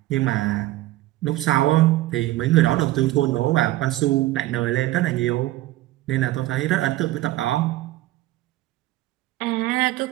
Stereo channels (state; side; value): quieter; left; 16.6 dB